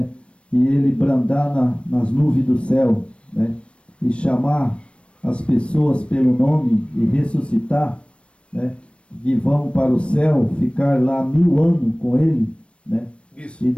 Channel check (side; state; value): right; late; 0.060 ms